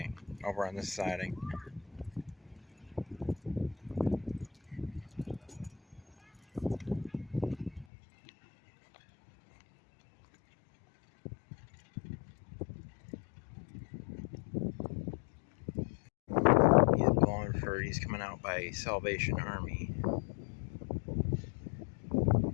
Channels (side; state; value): right; drops out; at 7.9 s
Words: over on this siding. He's coming out by Salvation Army.